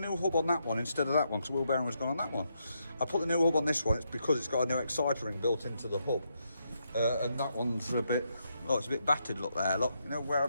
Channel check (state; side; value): inverted; both; correlation -0.80